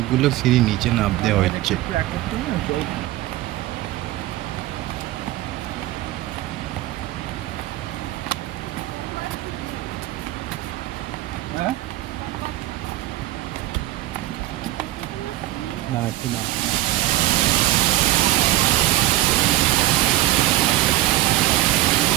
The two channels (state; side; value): quieter; left; 16.0 dB